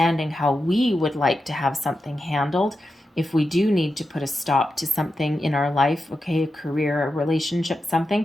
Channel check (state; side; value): normal; both; correlation 0.89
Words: how we would like to have something handled, if we do need to put a stop to something in our life, okay, a career, a relationship, something,